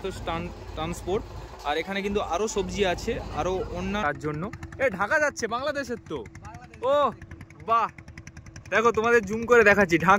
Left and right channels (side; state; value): both; identical; correlation 1.00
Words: ট্রান্সপোর্ট, আর এখানে কিন্তু আরো সবজি আছে, আরো অন্য তার জন্য। এই ঢাকা যাচ্ছে বাংলাদেশের তো। ও বাহ, দেখো তোমাদের জুম করে দেখাচ্ছি,